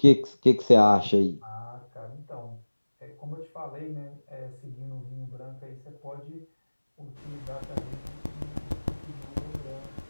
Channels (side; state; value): both; inverted; correlation -1.00